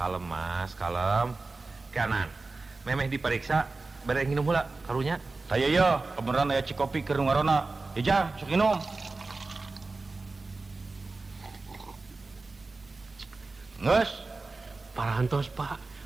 Mas, kalem. kanan memeh diperiksa bere nginum heula karunya. Saya ya, kebenaran aya cikopi keur ngarona. Ejang, sok minum. Nges, Parantos Pak,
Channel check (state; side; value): quieter; left; 3.6 dB